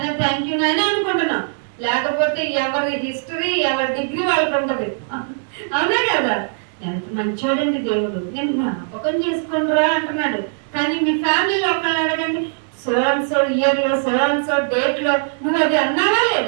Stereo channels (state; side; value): silent; left; digital silence